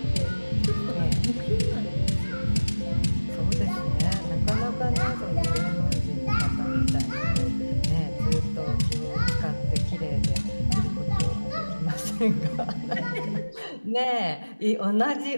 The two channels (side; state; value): both; inverted; correlation -1.00